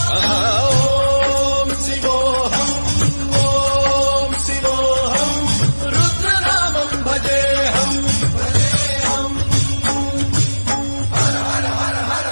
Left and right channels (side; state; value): both; inverted; correlation -1.00